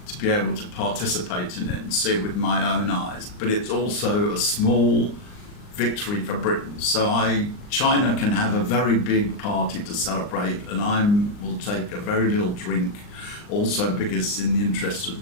to be able to participate in it and see it with my own eyes. But it's also a small victory for Britain. So China can have a very big party to celebrate, and I will take a very little drink also because it's in the interest of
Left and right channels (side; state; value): right; late; 39 ms